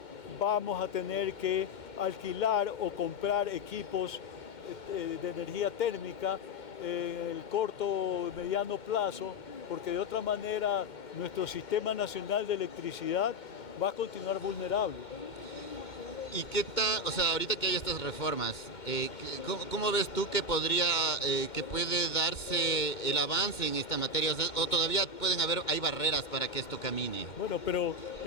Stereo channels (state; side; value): late; right; 2.2 ms